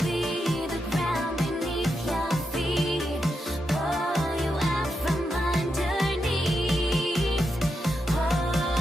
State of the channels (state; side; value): normal; both; correlation 0.85